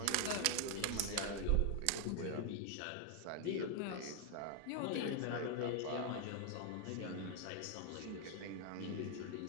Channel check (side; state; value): both; different; correlation 0.00